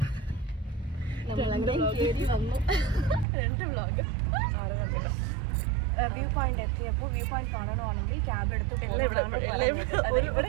കേറി വന്നു. 2 വ്ളോഗ്. വ്യൂ പോയിന്റ് എത്തിയപ്പോൾ വ്യൂ പോയിന്റ് കാണണമെങ്കിൽ ക്യാബ് എടുത്ത് ഇവിടെ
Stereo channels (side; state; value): left; drops out; at 3.2 s